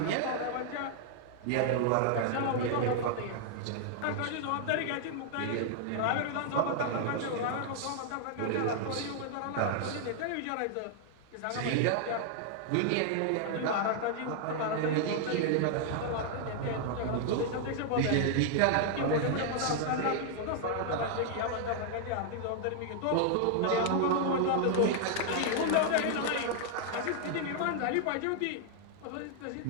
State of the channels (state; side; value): different; both; correlation 0.00